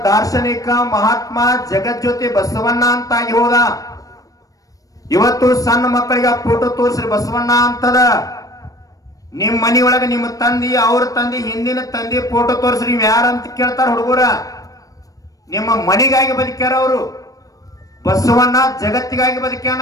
ದಾರ್ಶನಿಕ ಮಹಾತ್ಮ ಜಗಜ್ಯೋತಿ ಬಸವಣ್ಣ ಅಂತಾಗಿ ಹೋದ. ಇವತ್ತು ಸಣ್ಣ ಮಕ್ಕಳಿಗೆ ಆ ಫೋಟೋ ತೋರಿಸ್ರಿ ಬಸವಣ್ಣ ಅಂತದ. ನಿಮ್ ಮನಿಯೊಳಗೆ ನಿಮ್ಮ ತಂದಿ, ಅವ್ರ ತಂದಿ, ಹಿಂದಿನ ತಂದಿ ಫೋಟೋ ತೋರಿಸ್ರಿ. ನೀವು ಯಾರಂತ ಕೇಳ್ತಾರ ಹುಡುಗರ. ನಿಮ್ಮ ಮನಿಗಾಗಿ ಬದುಕ್ಯಾರ ಅವರು. ಬಸವಣ್ಣ ಜಗತ್ತಿಗಾಗಿ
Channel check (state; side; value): late; right; 0.17 ms